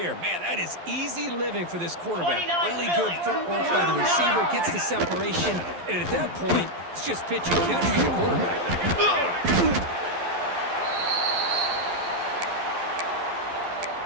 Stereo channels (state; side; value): late; left; 11 ms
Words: Man, that is easy living for this quarterback. 29 Really good footwork by the receiver. Gets the separation. And at that point, it's just pitch and catch for the quarterback.